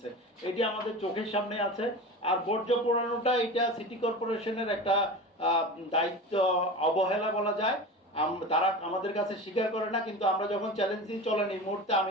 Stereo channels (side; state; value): both; normal; correlation 0.30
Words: এটি আমাদের চোখের সামনে আছে। আর বর্জ্য পোড়ানোটা এটা সিটি কর্পোরেশনের একটা দায়িত্ব অবহেলা বলা যায়। তারা আমাদের কাছে স্বীকার করে না, কিন্তু আমরা যখন চ্যালেঞ্জ দিই চলেন এই মুহূর্তে